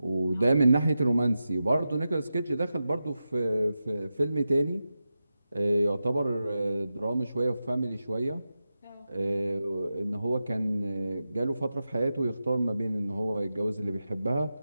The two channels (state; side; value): inverted; both; correlation -0.91